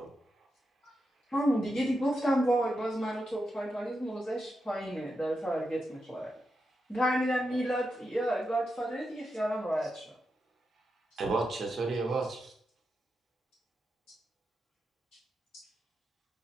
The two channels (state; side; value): normal; both; correlation 0.87